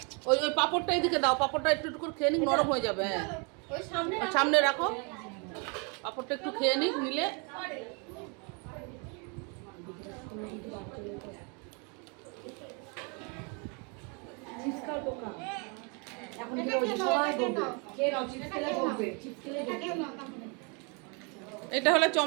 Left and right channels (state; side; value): quieter; left; 33.3 dB